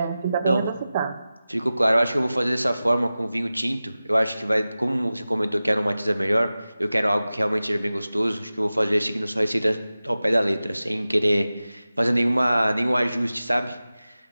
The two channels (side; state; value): both; inverted; correlation -0.95